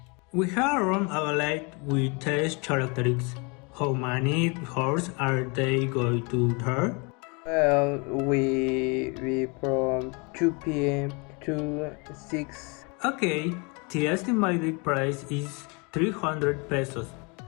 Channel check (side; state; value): right; quieter; 31.2 dB